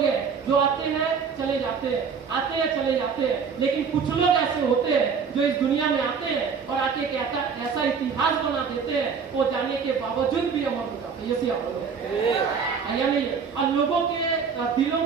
हैं जो आते हैं चले जाते हैं, आते हैं चले जाते हैं, लेकिन कुछ लोग ऐसे होते हैं जो इस दुनिया में आते हैं और आके कहता ऐसा इतिहास बना देते हैं, वो जाने के बावजूद भी अमर हो जाते हैं। यानी और लोगों के दिलों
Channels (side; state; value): left; quieter; 6.1 dB